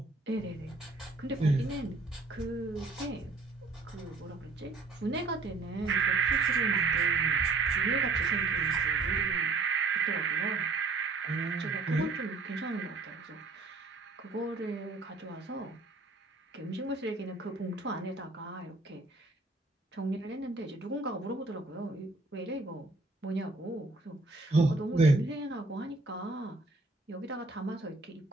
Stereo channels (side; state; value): left; quieter; 3.6 dB